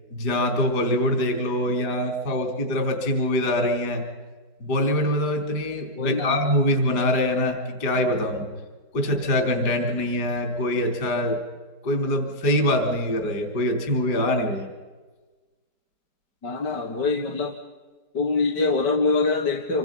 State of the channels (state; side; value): late; right; 5.0 ms